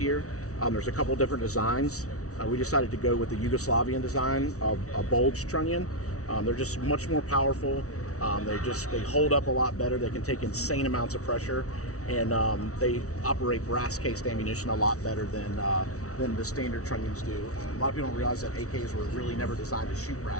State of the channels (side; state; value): right; late; 0.65 ms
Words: there's a couple different designs. We decided to go with the Yugoslavian design of a bulged trunnion. They're just much more powerful. They hold up a lot better. They can take insane amounts of pressure, and they operate brass cased ammunition a lot better than the standard trunnions do. A lot of people don't realize that AKs were really never designed to shoot